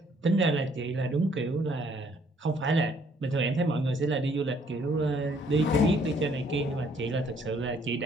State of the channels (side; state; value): both; normal; correlation 0.64